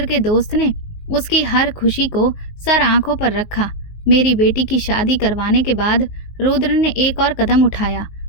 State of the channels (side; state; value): right; late; 19 ms